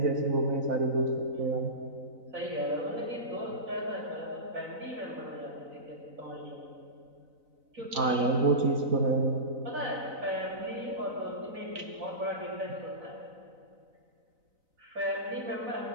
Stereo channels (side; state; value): left; late; 4.0 ms